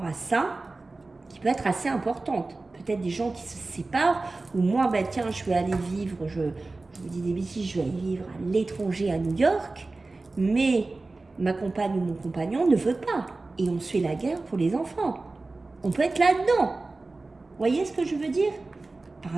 à ça qui peut être assez importante. Peut-être des gens qui se séparent, ou moi, ben, tiens, je vais aller vivre, je vous dis des bêtises, je vais aller vivre à l'étranger à New York, mais ma compagne ou mon compagnon ne veut pas. Et on se fait la guerre pour les enfants. On peut être là-dedans. Vous voyez ce que je veux dire? Par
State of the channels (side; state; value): left; quieter; 3.4 dB